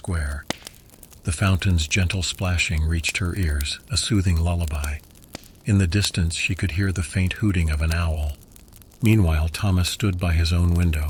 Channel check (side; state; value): both; identical; correlation 1.00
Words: The fountain's gentle splashing reached her ears, a soothing lullaby. In the distance she could hear the faint hooting of an owl. Meanwhile, Thomas stood by his own